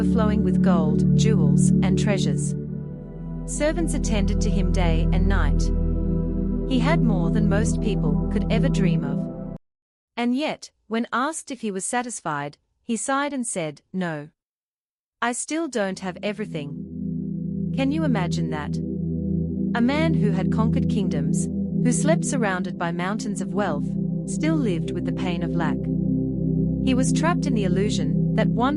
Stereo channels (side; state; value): both; identical; correlation 1.00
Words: with gold, jewels, and treasures. Servants attended to him day and night. He had more than most people could ever dream of. And yet, when asked if he was satisfied, he sighed and said, "No. I still don't have everything." Can you imagine that? A man who had conquered kingdoms, who slept surrounded by mountains of wealth, still lived with the pain of lack. He was trapped in the illusion that